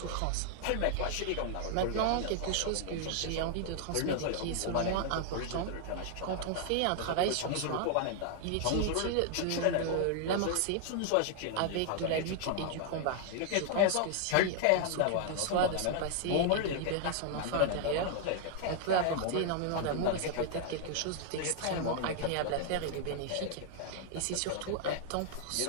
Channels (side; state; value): both; different; correlation 0.00